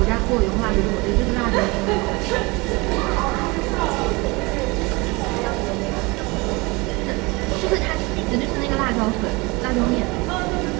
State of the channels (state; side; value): quieter; left; 25.2 dB